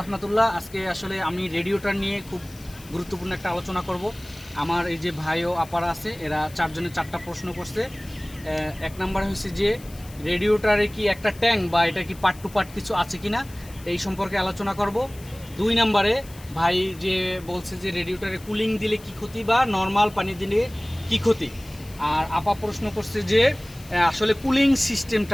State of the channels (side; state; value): left; noise; hiss, 21 dB below the sound